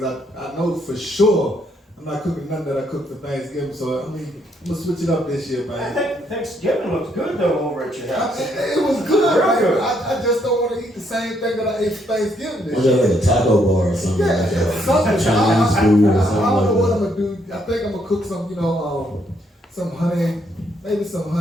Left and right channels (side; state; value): both; normal; correlation 0.72